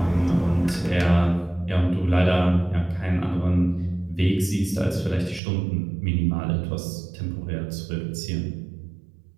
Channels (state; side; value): drops out; left; at 5.4 s